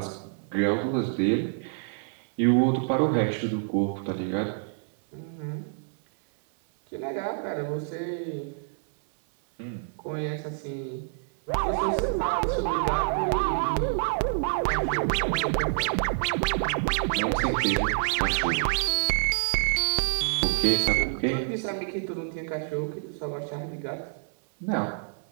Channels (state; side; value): silent; left; 59 dB below the other